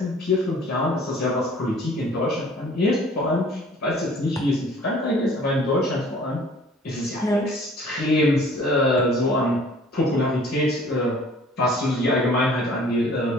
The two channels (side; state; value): both; normal; correlation 0.52